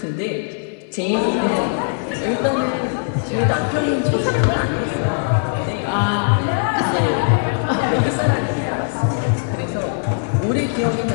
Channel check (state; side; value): silent; right; digital silence